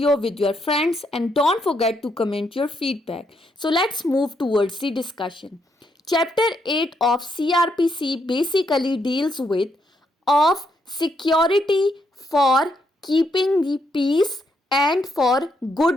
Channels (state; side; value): normal; both; correlation 0.76